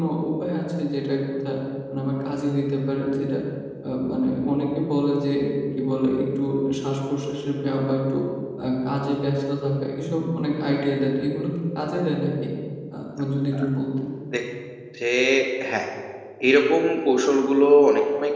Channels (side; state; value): both; identical; correlation 1.00